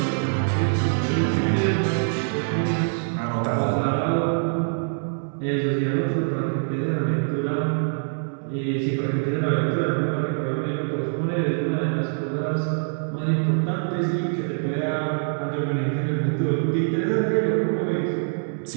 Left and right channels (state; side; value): silent; left; 62 dB below the other